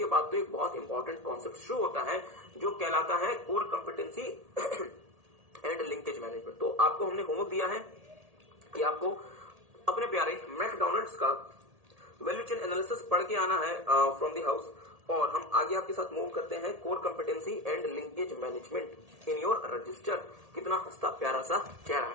बाद तो एक बहुत इंपॉर्टेंट कॉन्सेप्ट शुरू होता है जो कहलाता है core competency and linkage management. तो आपको हमने होमवर्क दिया है कि आपको अपने प्यारे मैकडॉनल्ड्स का वैल्यू चेन एनालिसिस पढ़ के आना है फ्रॉम द हाउस, और हम आगे आपके साथ मूव करते हैं core competency and linkage management in your register. कितना हंसता प्यारा सा चेहरा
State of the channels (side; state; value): left; late; 1.8 ms